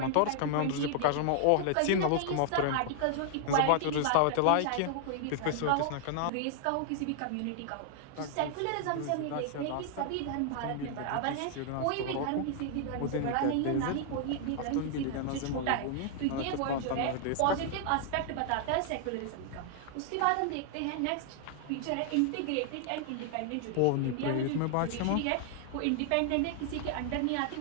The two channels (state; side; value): different; both; correlation 0.00